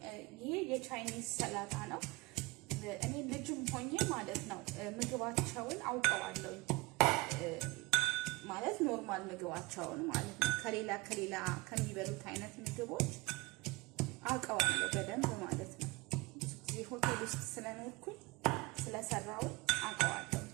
ይሄ የቻይኒዝ ሰላጣ ነው። እኔ ልጅም ሆኜ ማለት ነው ምግባቸውን አውቀዋለሁኝ። ማለት ኖርማል ምግባቸውን ማለት ነው ከሌላ ከሚበሉት አይነት ምግቦች አውቀዋለሁ በደንብ ማለት ነው። ብዙ ጊዜ ሆቴል ውስጥ ስለኖርኩኝ ስለሰራው አውቀዋለሁ።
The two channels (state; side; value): quieter; left; 23.1 dB